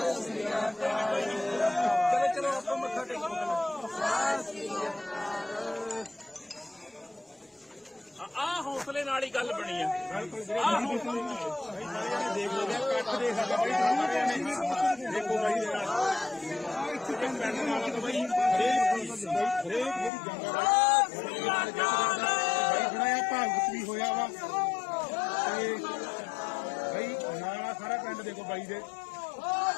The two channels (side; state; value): right; drops out; at 20.1 s